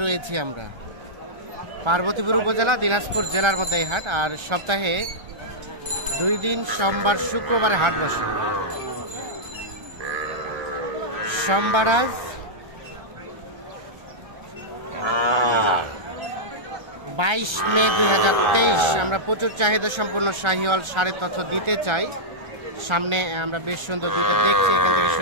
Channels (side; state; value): left; late; 1.3 ms